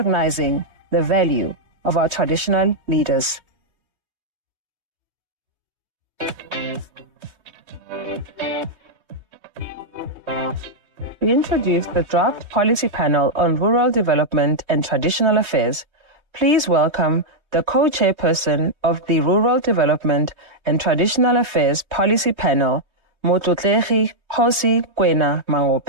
the value of our traditional leaders. We introduced the draft policy panel on rural development and traditional affairs. Please welcome the co-chairperson of the Rural Development and Traditional Affairs Policy Panel, Motlotlegi Kgosi Kwena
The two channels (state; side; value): late; left; 3.2 ms